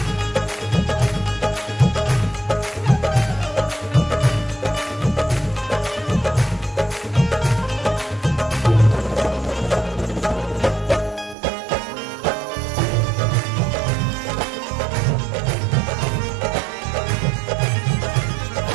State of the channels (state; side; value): drops out; left; at 11.4 s